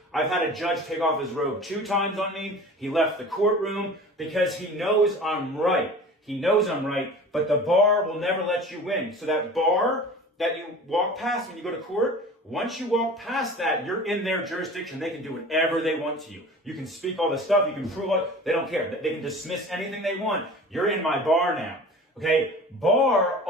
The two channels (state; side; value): normal; both; correlation 0.40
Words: I've had a judge take off his robe 2 times on me. He left the courtroom because he knows I'm right. He knows I'm right, but the bar will never let you win. So that bar that you walk past when you go to court, once you walk past that, you're in their jurisdiction. They can do whatever they want to you. You can speak all the stuff. You can prove it. They don't care. They can dismiss anything they want. You're in my bar now. Okay? Bar